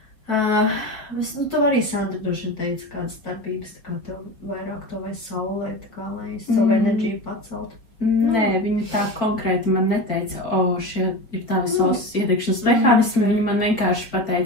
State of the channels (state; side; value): late; right; 4.4 ms